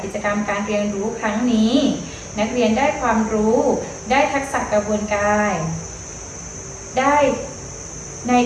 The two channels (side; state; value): both; identical; correlation 1.00